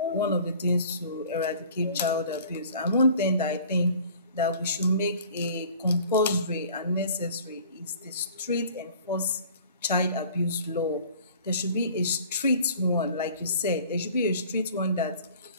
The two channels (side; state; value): both; inverted; correlation -0.48